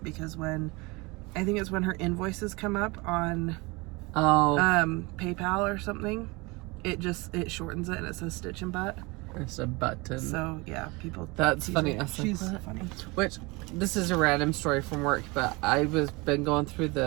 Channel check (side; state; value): left; quieter; 25.3 dB